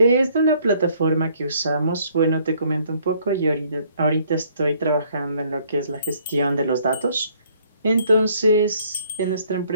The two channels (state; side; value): inverted; both; correlation -0.63